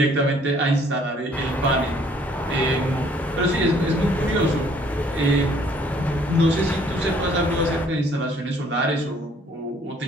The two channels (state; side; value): normal; both; correlation 0.61